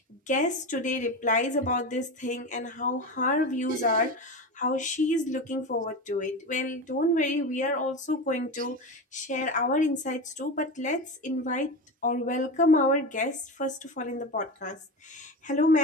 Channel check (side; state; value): both; normal; correlation 0.23